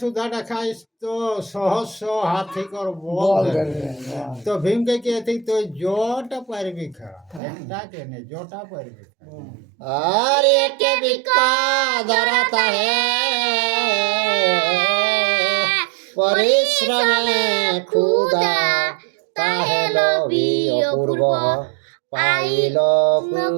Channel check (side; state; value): left; drops out; at 7.4 s